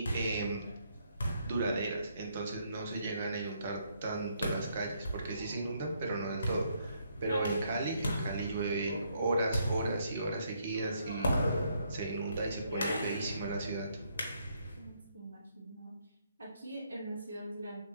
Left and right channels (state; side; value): inverted; both; correlation -0.72